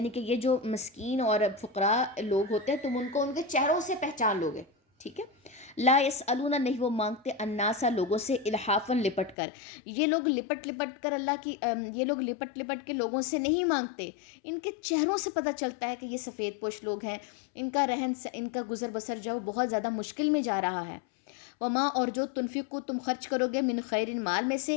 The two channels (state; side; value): drops out; right; at 9.3 s